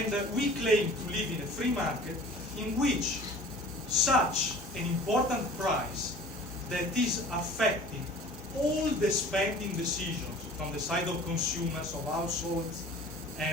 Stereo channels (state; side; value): normal; both; correlation 0.44